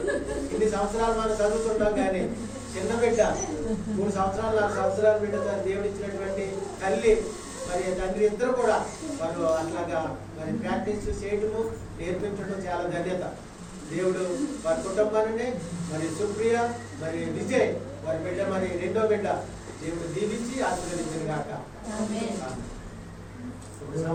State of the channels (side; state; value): both; identical; correlation 1.00